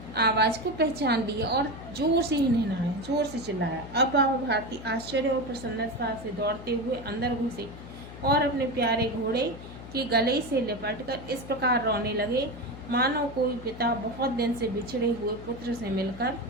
आवाज को पहचान लिया और जोर से हिनहिनाया, जोर से चिल्लाया। अब बाबा भारती आश्चर्य और प्रसन्नता से दौड़ते हुए अंदर घुसे और अपने प्यारे घोड़े के गले से लिपटकर इस प्रकार रोने लगे, मानो कोई पिता बहुत दिन से बिछड़े हुए पुत्र से मिल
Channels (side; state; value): left; noise; hum, 14 dB below the sound